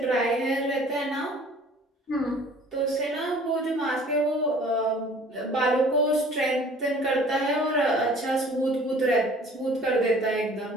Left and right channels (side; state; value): both; normal; correlation 0.51